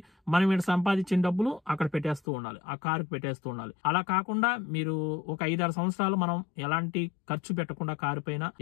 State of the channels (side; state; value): right; drops out; at 2.2 s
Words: మనం ఇక్కడ సంపాదించిన డబ్బులు అక్కడ పెట్టేస్తూ ఉండాలి, ఆ కారుకు పెట్టేస్తూ ఉండాలి. అలా కాకుండా మీరు ఒక 5-6 సంవత్సరాలు మనం ఎలాంటి ఖర్చు పెట్టకుండా కారు పైన